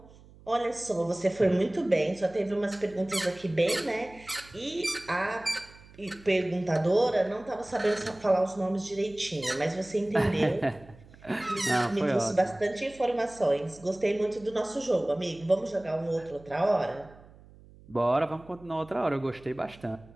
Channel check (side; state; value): right; noise; hum, 23 dB below the sound